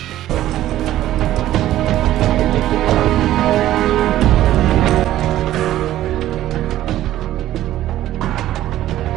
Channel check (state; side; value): quieter; left; 13.7 dB